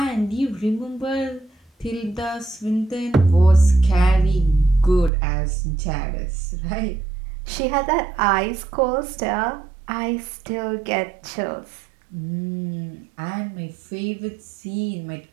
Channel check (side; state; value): left; drops out; at 5.1 s